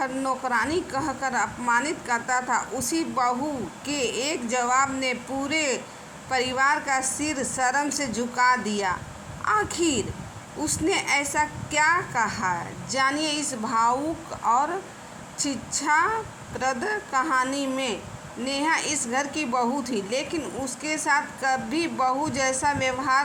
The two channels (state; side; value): identical; both; correlation 1.00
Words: नौकरानी कहकर अपमानित करता था, उसी बहू के एक जवाब ने पूरे परिवार का सिर शर्म से झुका दिया। आखिर उसने ऐसा क्या कहा, जानिए इस भावुक और शिक्षाप्रद कहानी में। नेहा इस घर की बहू थी, लेकिन उसके साथ कभी बहू जैसा